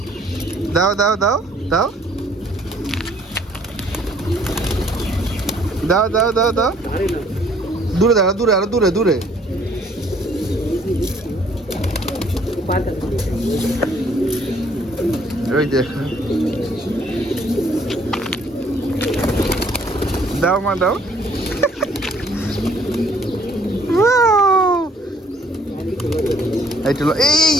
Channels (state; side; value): normal; both; correlation 0.62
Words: দাও দাও দাও দাও দাও দাও দাও দাও। দূরে দাও, দূরে, আরো দূরে, দূরে। ওই দেখো, দাও মা দাও। এই